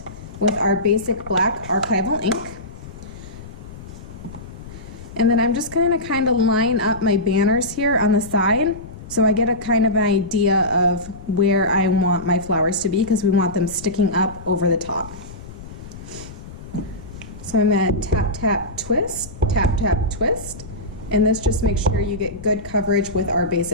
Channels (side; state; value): left; noise; rumble, 15 dB below the sound